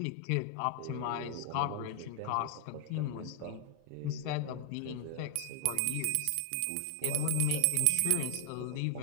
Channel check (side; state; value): both; different; correlation 0.00